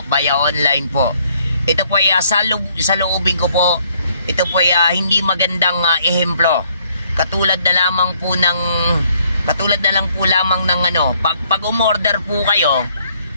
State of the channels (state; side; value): inverted; both; correlation -0.66